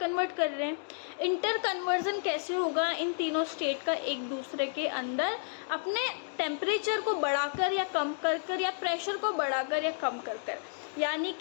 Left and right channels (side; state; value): right; silent; digital silence